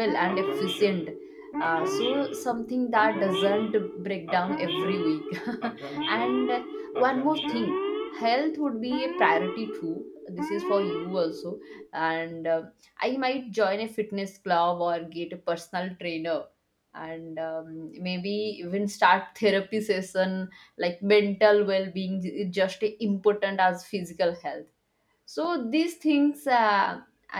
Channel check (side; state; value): both; identical; correlation 1.00